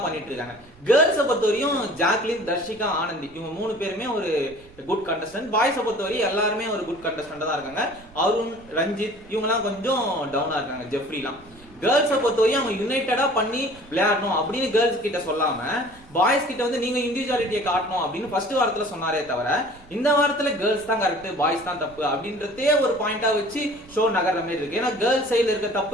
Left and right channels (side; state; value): right; noise; rumble, 24 dB below the sound